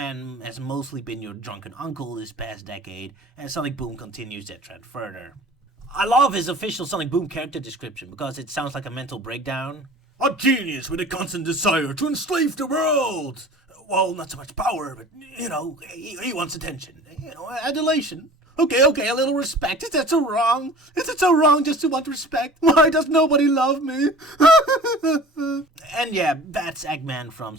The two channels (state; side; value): normal; both; correlation 0.43